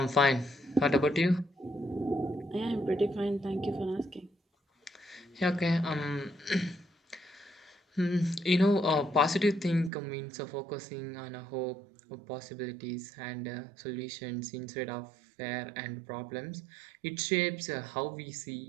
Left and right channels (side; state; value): left; drops out; at 9.9 s